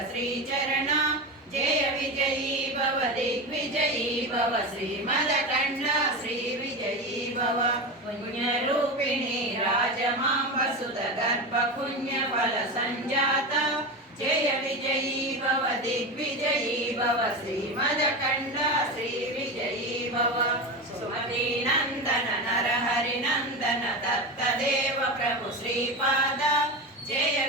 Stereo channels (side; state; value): both; normal; correlation 0.21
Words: श्रीचरण जय विजयी भव दिग्विजयी भव श्रीमदकण्ड श्री विजयी भव पुण्यरूपिणी राजमाम्बसुत गर्भ पुण्य फल संजाता जय विजयी भव दिग्विजयी भव श्रीमदकण्ड श्री विजयी भव सुमती नंदन नरहरि नंदन दत्तदेव प्रभु श्रीपाद जय